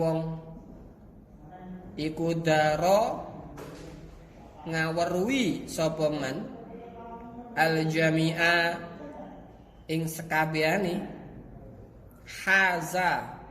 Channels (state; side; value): identical; both; correlation 1.00